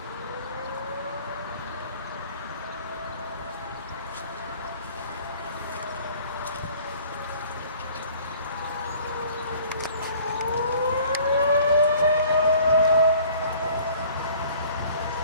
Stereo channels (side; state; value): both; inverted; correlation -0.52